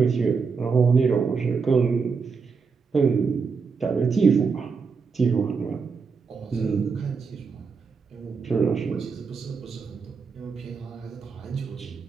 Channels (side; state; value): left; quieter; 5.2 dB